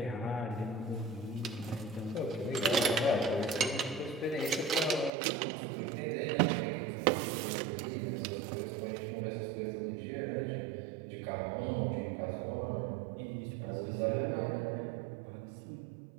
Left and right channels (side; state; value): left; drops out; at 5.1 s